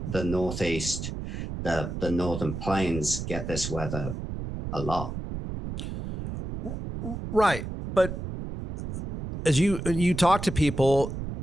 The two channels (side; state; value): right; noise; rumble, 6 dB below the sound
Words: Northeast, the Northern Plains get this weather a lot. Right. But as you talk to people